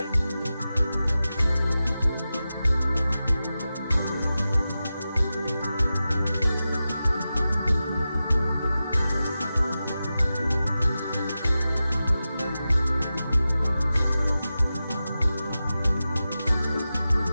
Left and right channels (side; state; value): both; inverted; correlation -0.93